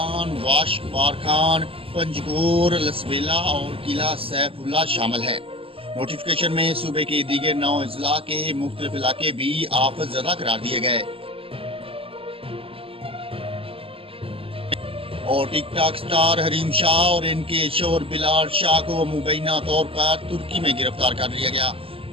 واشک، بارکھان، پنجگور، لسبیلا اور قلعہ سیف اللہ شامل ہیں۔ نوٹیفیکیشن میں صوبے کے دیگر 9 اضلاع کے مختلف علاقے بھی آفت زدہ قرار دیے گئے اور ٹک ٹاک سٹار حریم شاہ اور ان کے شوہر بلال شاہ کو مبینہ طور پر ترکی میں گرفتار کر لیا گیا۔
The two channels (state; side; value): late; left; 0.27 ms